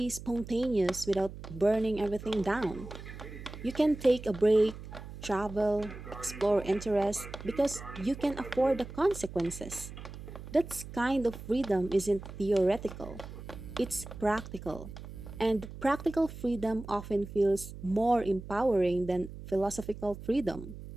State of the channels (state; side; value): noise; right; hum, 12 dB below the sound